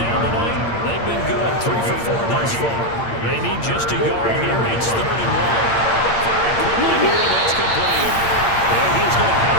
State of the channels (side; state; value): right; late; 8.7 ms